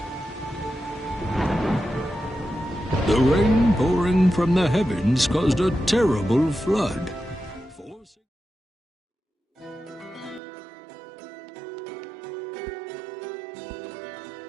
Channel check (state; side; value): drops out; left; at 10.4 s